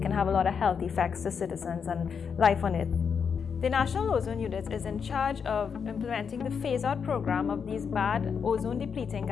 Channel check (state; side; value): quieter; right; 6.5 dB